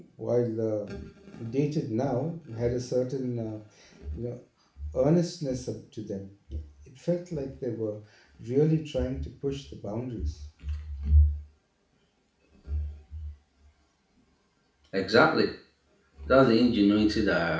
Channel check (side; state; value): both; identical; correlation 1.00